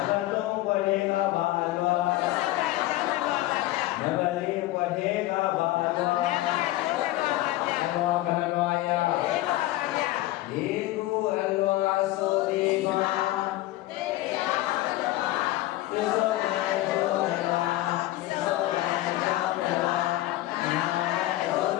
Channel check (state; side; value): quieter; right; 16.8 dB